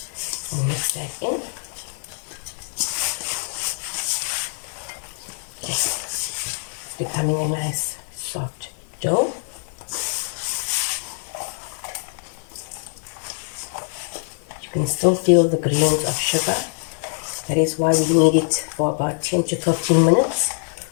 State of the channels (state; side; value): silent; right; 61 dB below the other